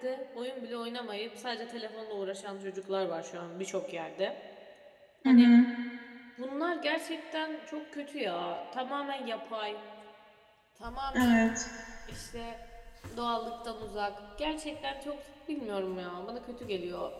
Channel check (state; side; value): identical; both; correlation 1.00